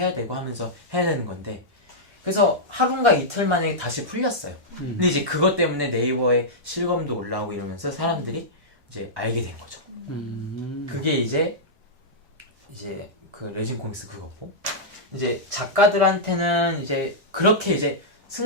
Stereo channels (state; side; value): normal; both; correlation -0.10